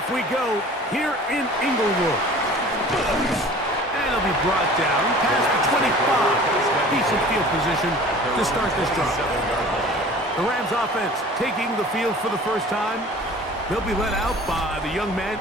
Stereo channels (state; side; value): normal; both; correlation 0.45